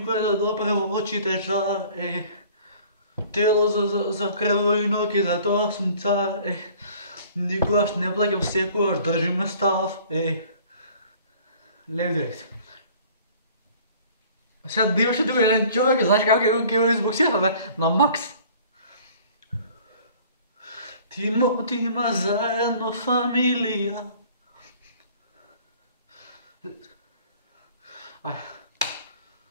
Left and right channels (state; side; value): inverted; both; correlation -0.51